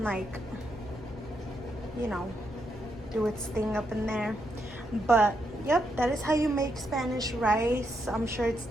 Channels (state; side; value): normal; both; correlation 0.80